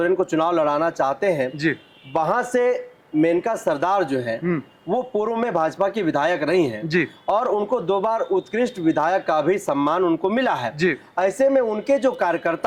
को चुनाव लड़ाना चाहते हैं जी, वहां से मेनका सरदार जो है वो पूर्व में भाजपा की विधायक रही हैं जी, और उनको 2 बार उत्कृष्ट विधायक का भी सम्मान उनको मिला है। जी। ऐसे में उनके जो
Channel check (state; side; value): identical; both; correlation 1.00